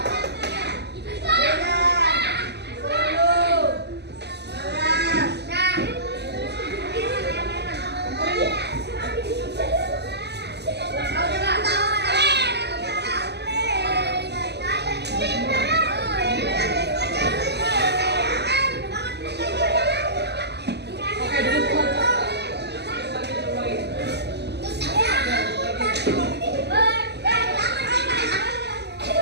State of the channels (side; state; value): left; late; 0.49 ms